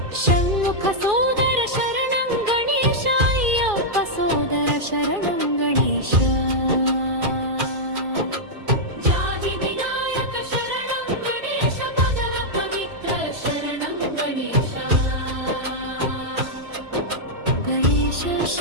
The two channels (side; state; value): left; late; 2.4 ms